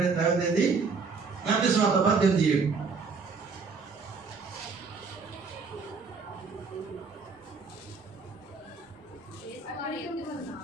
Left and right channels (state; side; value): quieter; left; 4.8 dB